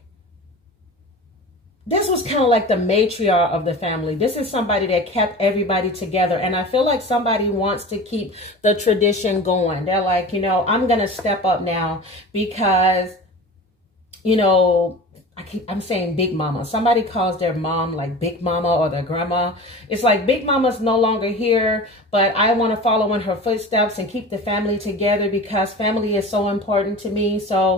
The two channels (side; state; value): both; normal; correlation 0.35